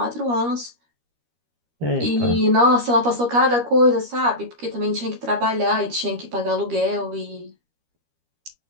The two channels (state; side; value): late; left; 13 ms